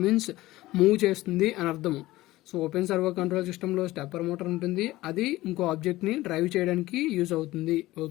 మీన్స్ మూవ్ చేస్తుంది అని అర్థము. So open servo control system లో స్టెప్పర్ మోటార్ ఉంటుంది, అది ఇంకో ఆబ్జెక్ట్ ని డ్రైవ్ చేయడానికి యూజ్ అవుతుంది.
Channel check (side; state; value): right; quieter; 17.6 dB